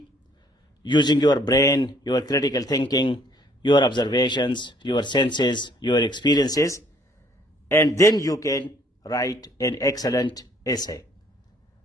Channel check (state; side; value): normal; both; correlation 0.62